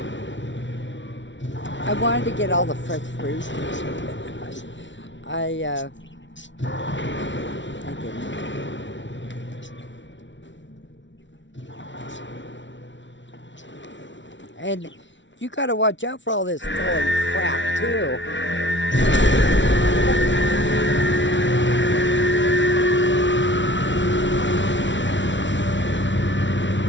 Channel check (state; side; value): late; right; 0.55 ms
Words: I wanted to get all the fresh fruit. I didn't. And you gotta watch out for all this falling crap too.